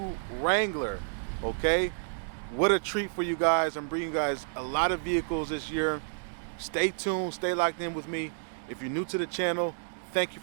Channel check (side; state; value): left; silent; digital silence